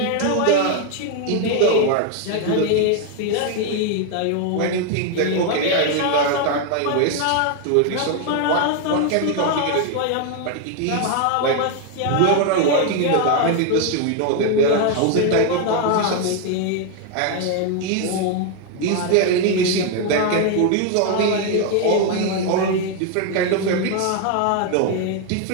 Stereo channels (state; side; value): different; both; correlation 0.01